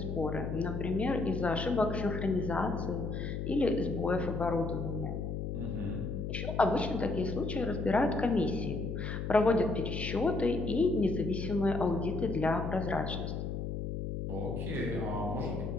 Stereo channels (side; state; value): left; noise; hum, 3 dB below the sound